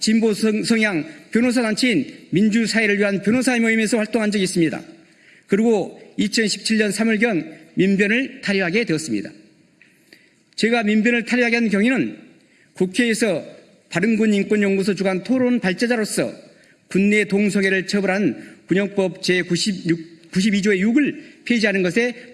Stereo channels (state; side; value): identical; both; correlation 1.00